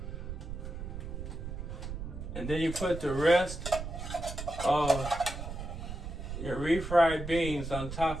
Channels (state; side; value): noise; right; rumble, 7 dB below the sound